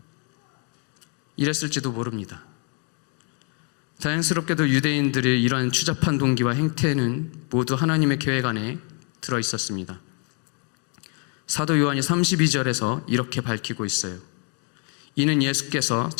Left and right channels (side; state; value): right; quieter; 38.3 dB